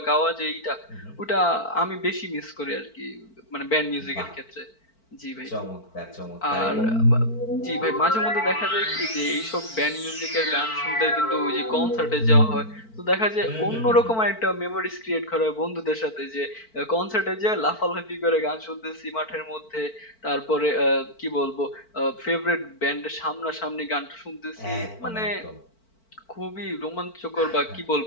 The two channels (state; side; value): late; right; 4.5 ms